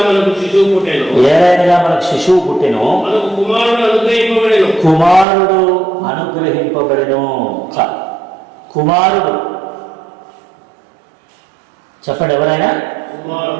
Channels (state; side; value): drops out; left; at 5.2 s